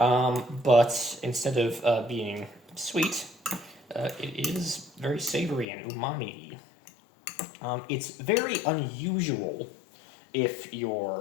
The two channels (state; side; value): drops out; right; at 5.7 s